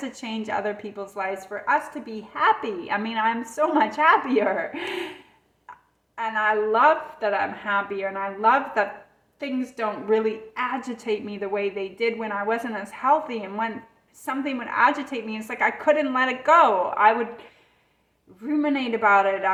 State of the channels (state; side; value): identical; both; correlation 1.00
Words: change other people's lives, for us to be happy. I mean, I'm so much happier. And I love that I'm happier, and I love that things don't really agitate me the way they did when I wasn't as healthy. And when something would agitate me, it's like I couldn't let it go. I would ruminate about it.